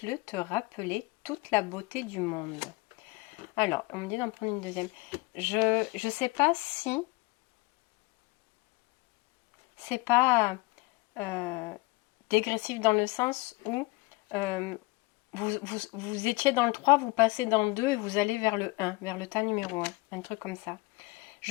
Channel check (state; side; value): quieter; right; 23.3 dB